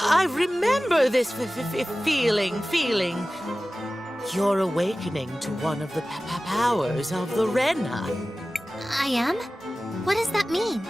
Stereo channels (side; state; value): both; normal; correlation 0.96